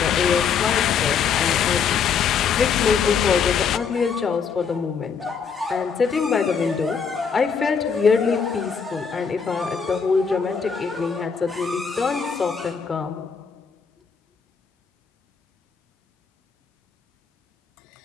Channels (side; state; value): right; quieter; 6.3 dB